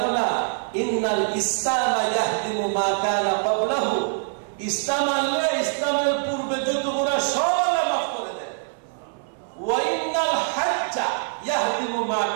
না ইন্নাল ইসলাম ইয়াহদিমু মা কানা ক্বাবলাহু, ইসলাম আনলে ইসলামের পূর্বে যত গুনাহ সব আল্লাহ মাফ করে দেন। ওয়া ইন্নাল হাজ্জা ইয়াহদিমু মা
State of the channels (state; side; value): silent; left; 61 dB below the other